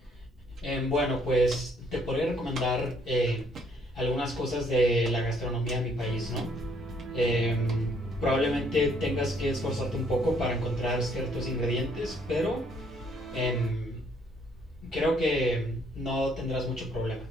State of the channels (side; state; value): both; normal; correlation 0.66